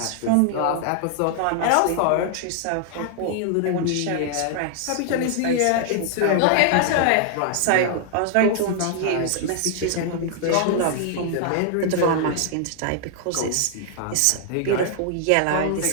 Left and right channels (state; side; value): different; both; correlation 0.00